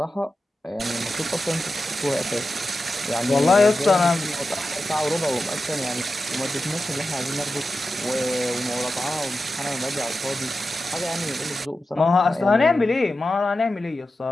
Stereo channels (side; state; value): both; normal; correlation 0.92